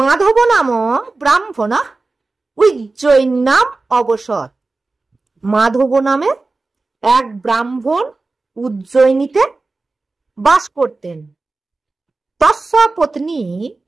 নাম ব্রাহ্মণ উজ্জয়িন নাম অবসর। মাধব নামে এক ব্রাহ্মণ উজ্জয়িনীতে বাস করতেন। তস্য পত্নী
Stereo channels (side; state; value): left; quieter; 3.5 dB